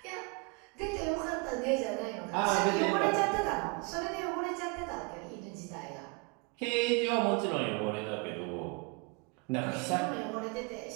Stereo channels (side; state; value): left; quieter; 31.1 dB